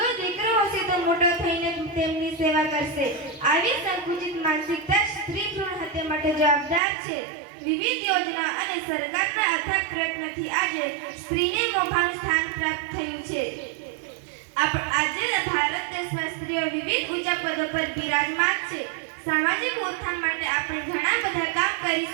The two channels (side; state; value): left; drops out; at 6.8 s